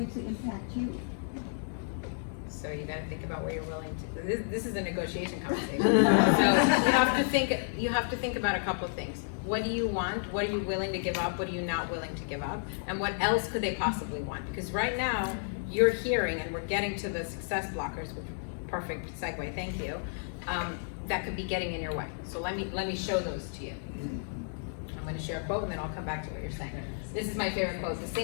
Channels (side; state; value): right; silent; digital silence